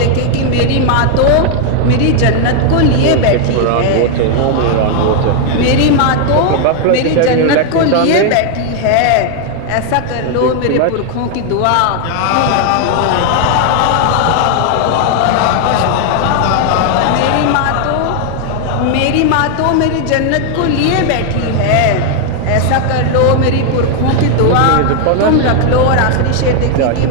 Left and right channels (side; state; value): both; different; correlation 0.00